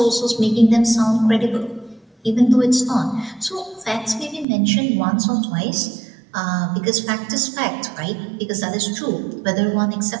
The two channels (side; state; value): left; drops out; at 4.5 s